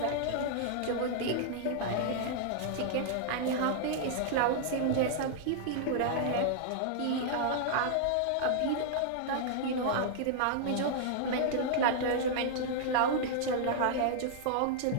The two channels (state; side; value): different; both; correlation -0.01